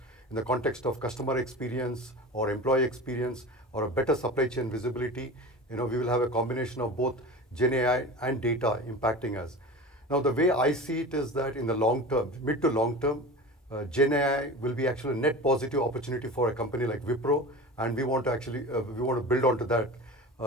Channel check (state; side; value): normal; both; correlation 0.32